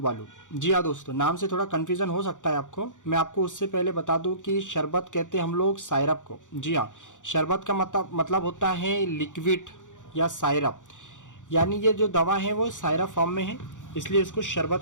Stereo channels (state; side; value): late; right; 0.86 ms